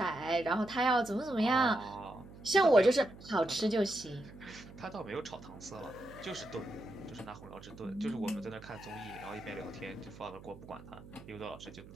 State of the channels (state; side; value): noise; right; hum, 17 dB below the sound